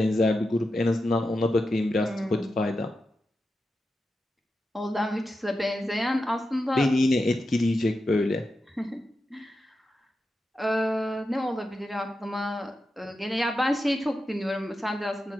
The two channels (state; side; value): normal; both; correlation 0.89